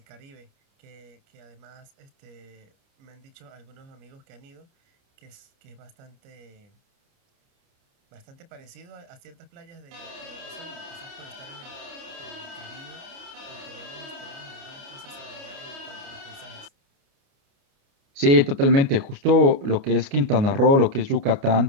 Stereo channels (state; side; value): late; left; 29 ms